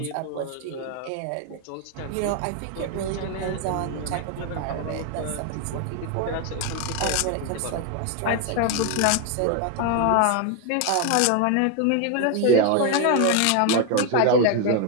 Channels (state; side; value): different; both; correlation 0.01